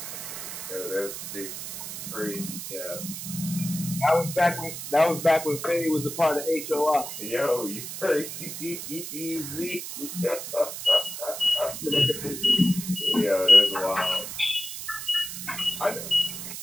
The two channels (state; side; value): noise; right; hiss, 8 dB below the sound